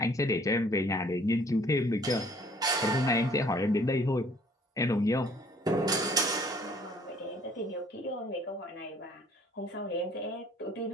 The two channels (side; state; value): both; normal; correlation 0.57